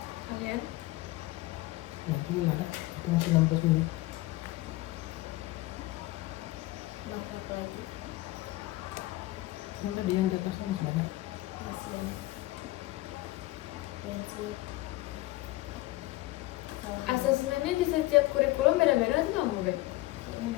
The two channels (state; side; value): quieter; right; 18.9 dB